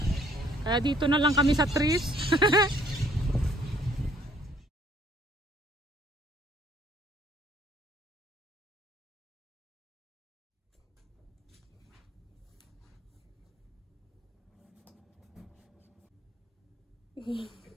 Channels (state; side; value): normal; both; correlation 0.62